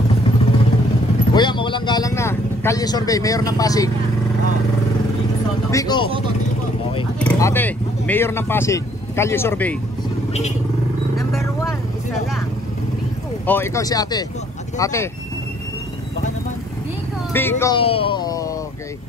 Kuya, mawalang galang na. Kalye Survey, mayor ng Pasig. Biko. Okay. Ate, mayor ng Pasig. Kalye Survey. Number 1, isa lang. Bigo. Oh, ikaw si ate. Ate, Baka naman. Bigo. Biko. Okay.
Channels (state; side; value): normal; both; correlation 0.62